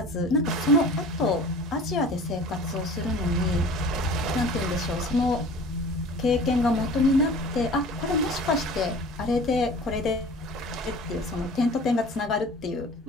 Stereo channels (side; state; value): both; normal; correlation 0.43